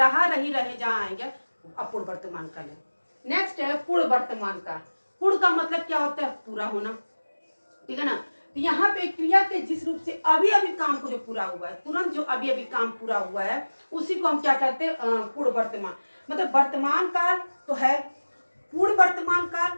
रही, रहे जहाँ आएंगे अपूर्व वर्तमान काल है। नेक्स्ट है पूर्ण वर्तमान काल। पूर्ण का मतलब क्या होता है, पूरा होना, ठीक है ना। तो यहाँ पे क्रिया के जिस रूप से अभी अभी काम को जो पूरा हुआ है, तुरंत जो अभी अभी काम पूरा हुआ है, उसी को हम क्या कहते हैं, पूर्ण वर्तमान। मतलब वर्तमान काल तो है, पूर्ण वर्तमान काल,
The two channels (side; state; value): both; inverted; correlation -1.00